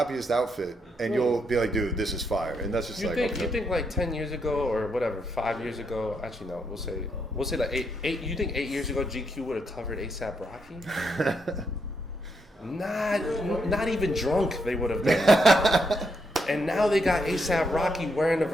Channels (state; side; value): normal; both; correlation 0.78